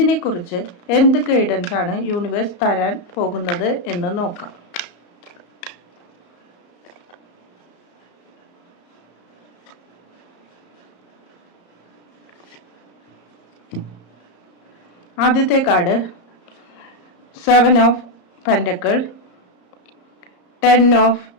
എന്ത് ഗൈഡൻസ് ആണ് യൂണിവേഴ്സ് തരാൻ പോകുന്നത് എന്ന് നോക്കാം. ആദ്യത്തെ card 7 of pentacle, 10 of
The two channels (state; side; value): late; right; 34 ms